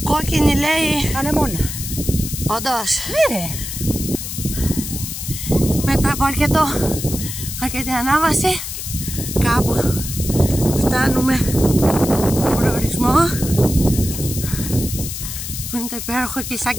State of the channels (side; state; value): left; noise; hiss, 7 dB below the sound